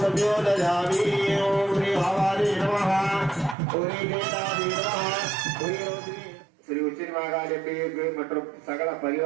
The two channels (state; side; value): drops out; left; at 3.6 s